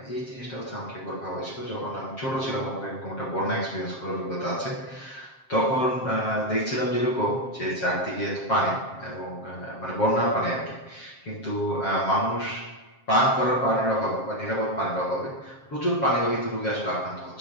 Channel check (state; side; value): late; right; 7.5 ms